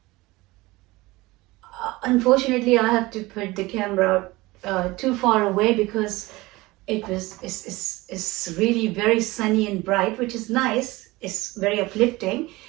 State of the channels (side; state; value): left; quieter; 20.7 dB